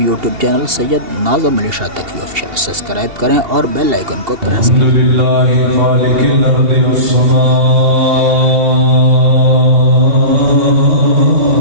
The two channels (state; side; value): late; left; 2.8 ms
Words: چینل سید ناظم علی شاہ تقوی آفیشل سبسکرائب کریں اور بیل آئیکن کو پریس کریں۔ الحمدللہ خالق الارض والسماء